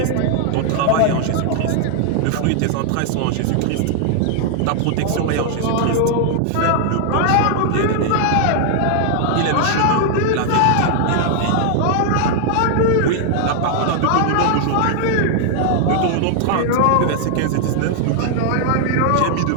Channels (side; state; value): both; different; correlation 0.00